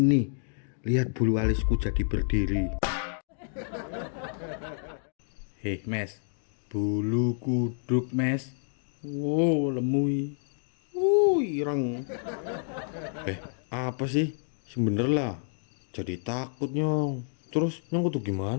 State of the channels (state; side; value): silent; right; digital silence